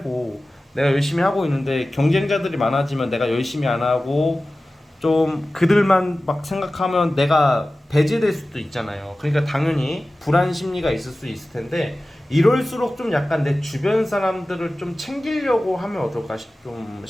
내가 열심히 하고 있는데 경쟁자들이 많아지면 내가 열심히 안 하고 좀 그들만 막 생각하면 내가 배제될 수도 있잖아요. 그러니까 당연히 불안 심리가 있을 수 있을 텐데 이럴수록 좀 약간 내 주변 사람들을 좀 챙기려고 하면 어떨까 좀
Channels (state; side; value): normal; both; correlation 0.96